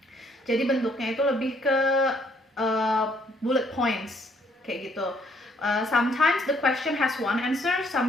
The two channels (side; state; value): both; normal; correlation 0.67